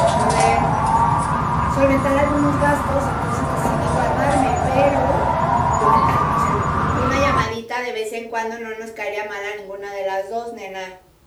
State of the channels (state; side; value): identical; both; correlation 1.00